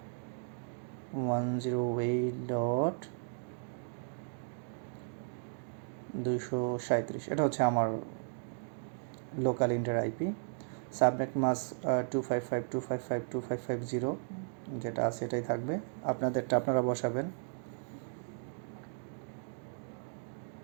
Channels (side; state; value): left; silent; digital silence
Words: এটা হচ্ছে আমার লোকাল ইন্ডিয়ার IP। সাবনেট মাস্ক 255.255.255.0 যেটা আছে এটাই থাকবে, আপনাদেরটা আপনারা বসাবেন।